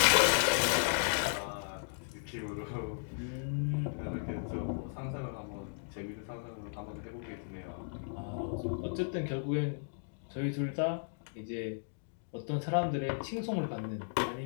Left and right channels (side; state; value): right; silent; digital silence